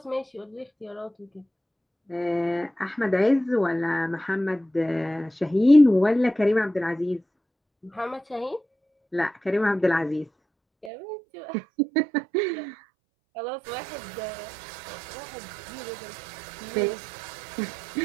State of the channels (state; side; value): drops out; left; at 10.9 s